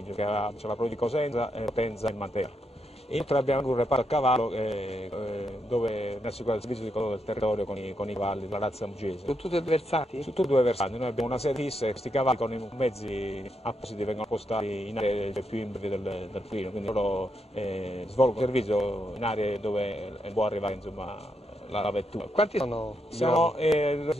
c'è la provincia di Cosenza, Potenza e Matera. Inoltre abbiamo anche un reparto a cavallo dove ne assicura il servizio di controllo del territorio con i cavalli della razza mugese. Sono tutti versati? Su tutti e 2 versanti, noi abbiamo una sede fissa e questi cavalli con i mezzi appositi vengono postati in aree più imbridi del Pollino, quindi loro svolgono servizio in aree dove può arrivare insomma, la vettura. Quanti sono? Sono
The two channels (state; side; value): normal; both; correlation 0.81